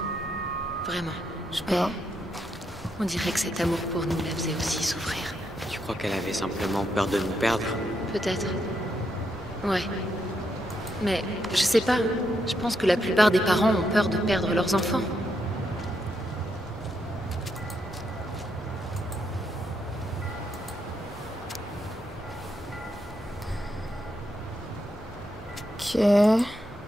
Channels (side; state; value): both; normal; correlation 0.80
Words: Vraiment. Je sais pas. On dirait que cet amour pour nous la faisait aussi souffrir. Tu crois qu'elle avait simplement peur de nous perdre? Peut-être. Ouais. Mais je sais pas. Je pense que la plupart des parents ont peur de perdre leurs enfants. Ok.